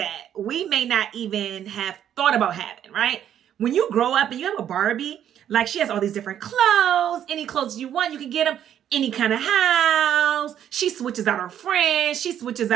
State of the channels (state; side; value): quieter; left; 10.2 dB